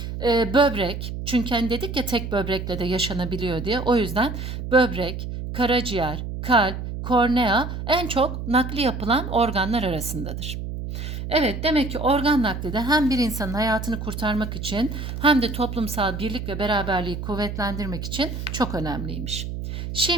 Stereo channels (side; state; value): right; noise; hum, 6 dB below the sound